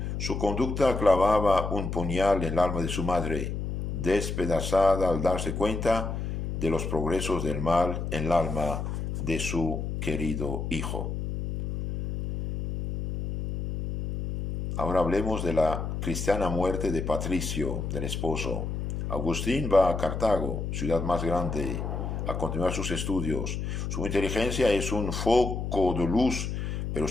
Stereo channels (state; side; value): noise; left; hum, 4 dB below the sound